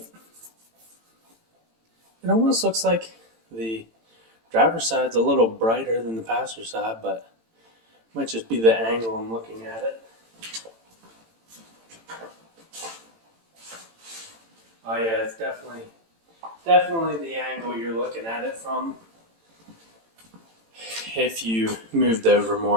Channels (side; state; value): left; late; 18 ms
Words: It almost looks like the driver's side's a little brighter than the passenger side, but it might just be the angle I'm looking at it. Oh yeah, it's definitely the angle you're looking at it from. If you moved over